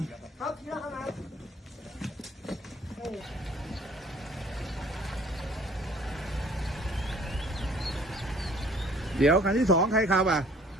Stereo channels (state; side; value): normal; both; correlation 0.55